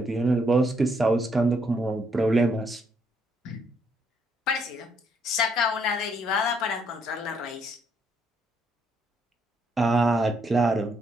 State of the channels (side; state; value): both; normal; correlation 0.73